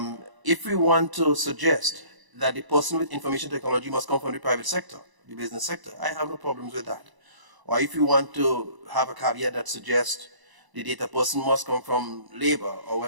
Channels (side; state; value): left; late; 1.0 ms